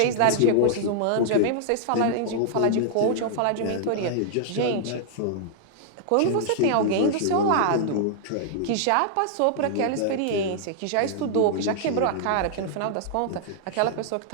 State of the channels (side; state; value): both; different; correlation -0.01